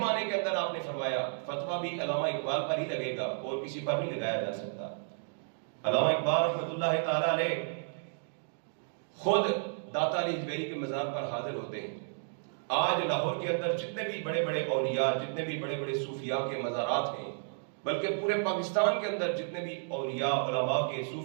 کے اندر آپ نے فرمایا، فتویٰ بھی علامہ اقبال پر ہی لگے گا اور کسی پر نہیں لگایا جا سکتا۔ علامہ اقبال رحمت اللہ تعالیٰ علیہ خود داتا علی حجویری کے مزار پر حاضر ہوتے ہیں۔ آج لاہور کے اندر جتنے بھی بڑے بڑے اولیاء، جتنے بھی بڑے بڑے صوفیاء کے مزارات ہیں، بلکہ پورے پاکستان کے اندر جتنے بھی اولیاء، علماء کے،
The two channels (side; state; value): left; silent; digital silence